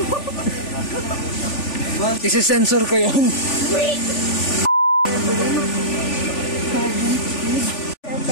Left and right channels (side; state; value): right; late; 3.4 ms